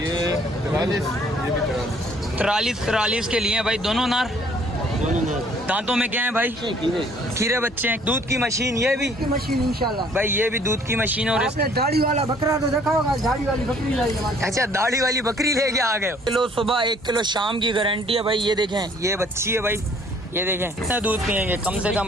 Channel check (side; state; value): both; normal; correlation 0.59